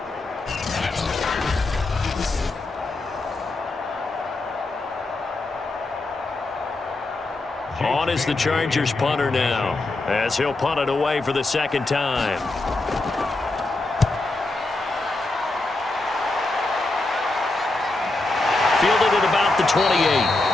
On is the Chargers punter now, as he'll punt it away for the second time. Fielded at about the 28.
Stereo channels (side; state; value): right; quieter; 3.0 dB